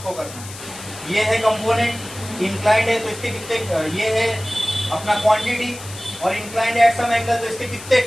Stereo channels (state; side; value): noise; left; hiss, 14 dB below the sound